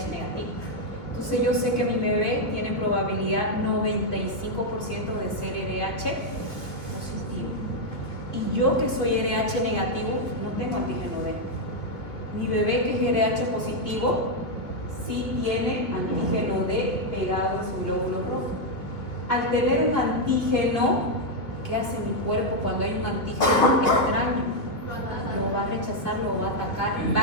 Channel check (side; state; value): right; late; 2.7 ms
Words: negativo. Entonces yo sé que mi bebé tiene probabilidad 95% de ser RH positivo. Y yo que soy RH negativo, no tengo antígeno D. Mi bebé que es RH positivo, sí tiene antígeno D pegado en su glóbulo rojo. Al tener un antígeno, ¿qué hace mi cuerpo cuando hay un antígeno extraño? Lo va a rechazar, lo va a atacar, va